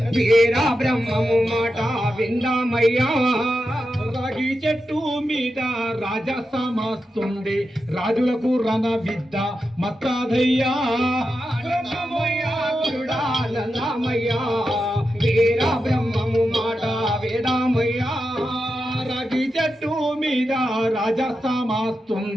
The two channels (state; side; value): normal; both; correlation 0.89